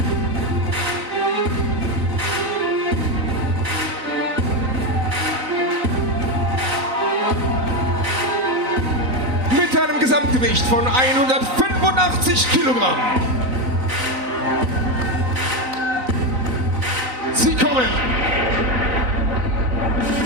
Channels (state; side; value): late; left; 3.9 ms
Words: Mit einem Gesamtgewicht von 185 Kilogramm. Sie kommen